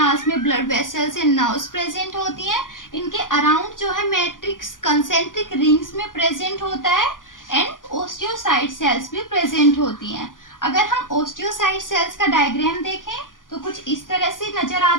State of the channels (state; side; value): late; right; 0.88 ms